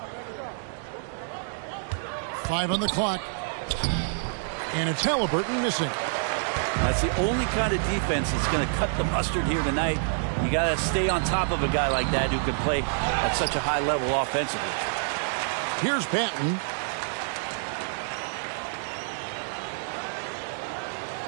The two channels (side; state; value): left; silent; digital silence